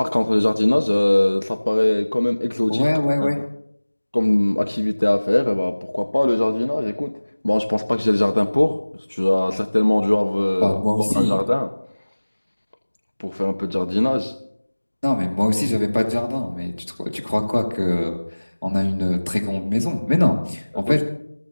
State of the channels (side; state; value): both; inverted; correlation -1.00